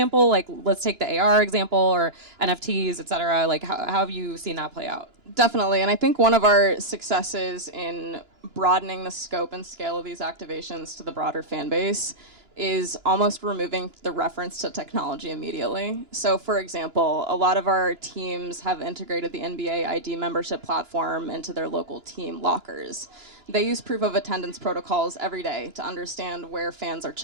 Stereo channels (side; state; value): left; late; 2.9 ms